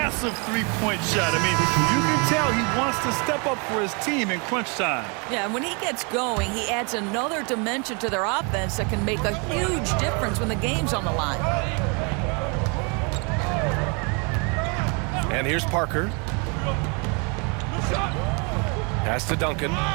3-point shot. I mean, you can tell he wants to step up for his team in crunch time. Yeah, and when he gets going, he adds another dimension to their offense that can make a huge difference when the game's on the line. And here's Parker. Pass to Duncan.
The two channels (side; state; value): left; quieter; 33.4 dB